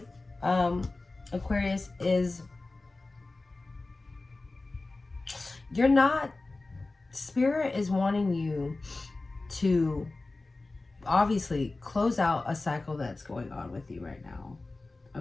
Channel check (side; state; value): right; quieter; 3.3 dB